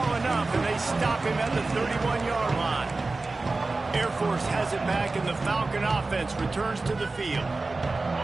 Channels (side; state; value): left; quieter; 3.5 dB